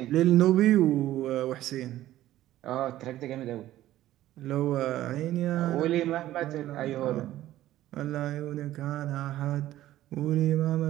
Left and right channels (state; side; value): quieter; left; 14.2 dB